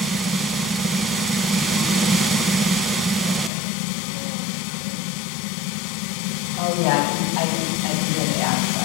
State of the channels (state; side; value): drops out; right; at 3.5 s